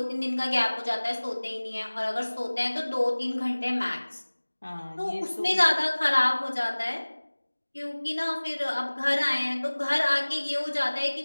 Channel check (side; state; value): both; inverted; correlation -1.00